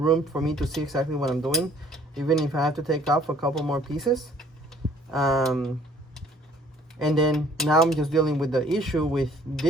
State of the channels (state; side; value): normal; both; correlation 0.57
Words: for me to see exactly what I'm doing, even if I have to take off a couple more pieces. And then now I'm just dealing with the issue with